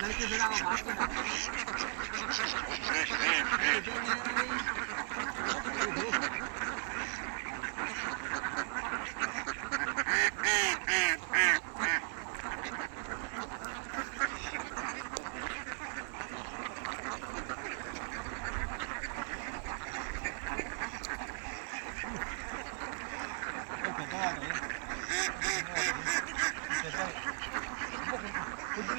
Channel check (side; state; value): left; silent; 53 dB below the other